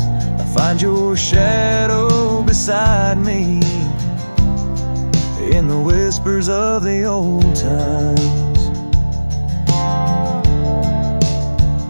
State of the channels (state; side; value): inverted; both; correlation -1.00